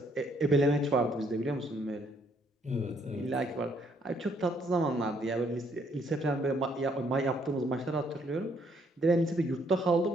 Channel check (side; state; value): both; normal; correlation 0.68